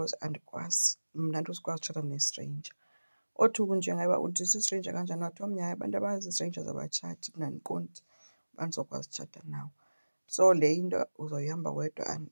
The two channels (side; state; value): both; inverted; correlation -1.00